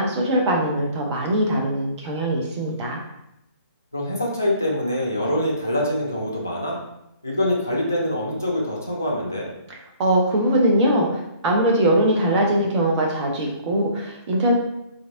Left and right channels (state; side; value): inverted; both; correlation -0.56